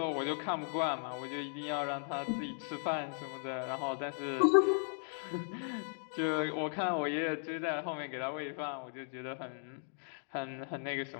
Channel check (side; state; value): right; silent; 53 dB below the other